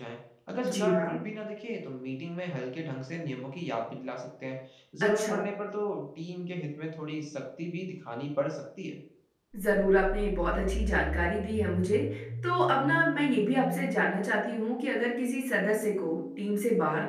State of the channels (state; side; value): identical; both; correlation 1.00